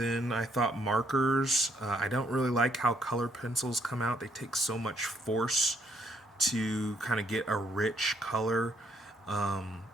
I thought markers. I don't really like how color pencils come out. They take so much force to kind of get a rich color.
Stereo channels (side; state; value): both; normal; correlation 0.70